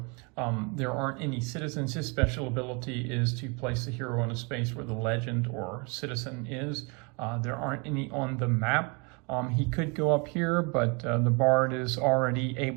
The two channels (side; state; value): left; quieter; 31.7 dB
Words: There aren't any citizens. His special ability is to place the hero in a space where the legend or citizen is. There aren't any on the map. He could go up here, but the bard is already